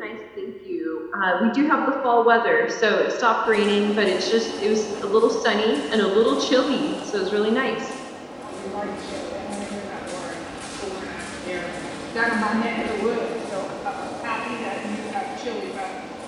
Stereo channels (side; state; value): both; identical; correlation 1.00